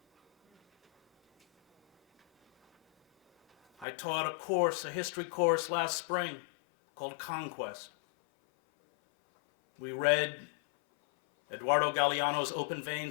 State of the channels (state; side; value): drops out; right; at 3.9 s